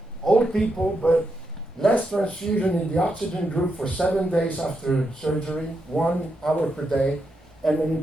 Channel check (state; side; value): normal; both; correlation 0.83